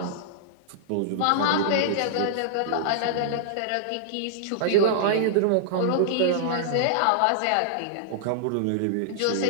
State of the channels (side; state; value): both; different; correlation -0.01